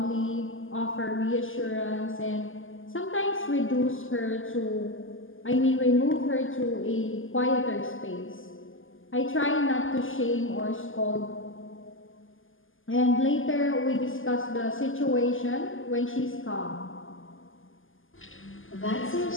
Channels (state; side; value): late; right; 0.58 ms